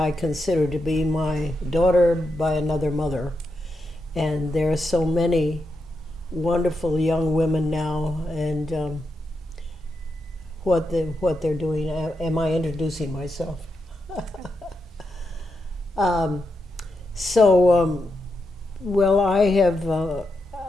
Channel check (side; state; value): both; normal; correlation 0.85